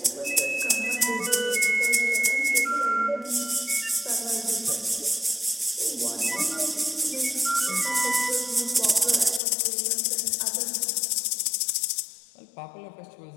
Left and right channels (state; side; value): drops out; right; at 9.4 s